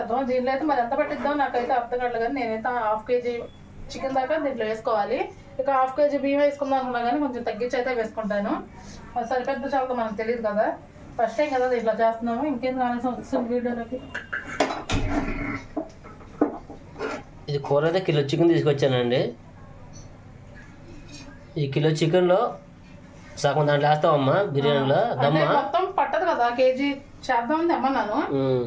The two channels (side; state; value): both; identical; correlation 1.00